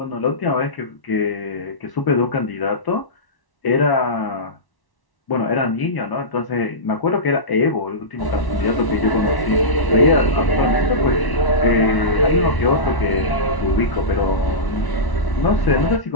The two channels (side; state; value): right; late; 1.1 ms